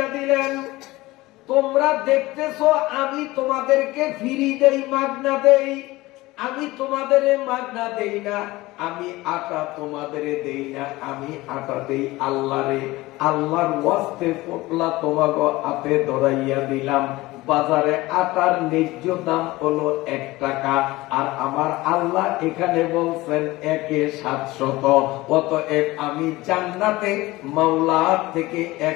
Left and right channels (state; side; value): quieter; right; 19.6 dB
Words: দিলেন, তোমরা দেখতেছো আমি তোমাদেরকে ফ্রি দেই, মাগনা দেই। আমি তোমাদের মাগনা দেই না, আমি আটা তোমাদের দেই না, আমি আটা দেই আল্লাহরে। আল্লাহর ওয়াস্তে পোটলা তোমাকে হাতে ধরাইয়া দিলাম। বাজারে আটার ন্যায্য দাম হলো 1 টাকা, আর আমার আল্লাহ এখানে বলছেন 1/700। অতএব আমি জান্নাতে মাওলার থেকে